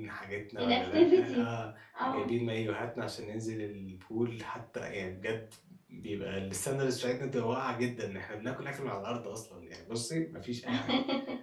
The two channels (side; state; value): both; identical; correlation 1.00